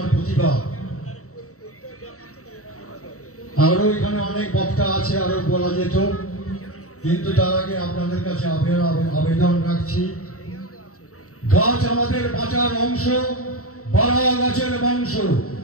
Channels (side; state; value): right; late; 0.64 ms